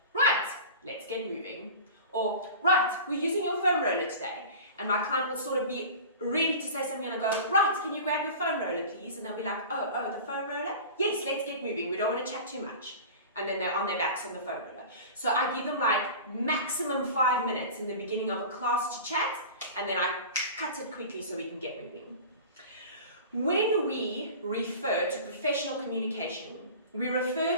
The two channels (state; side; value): inverted; both; correlation -0.36